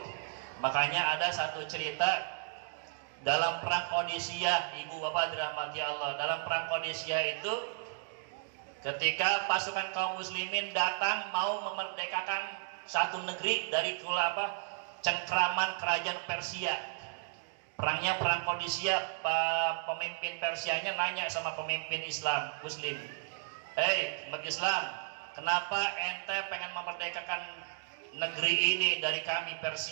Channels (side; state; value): left; silent; digital silence